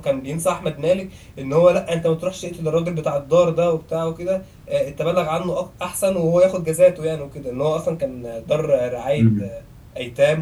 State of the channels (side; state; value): both; identical; correlation 1.00